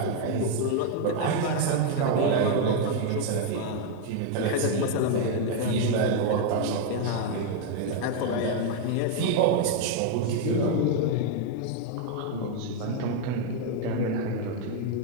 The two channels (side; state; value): both; different; correlation 0.00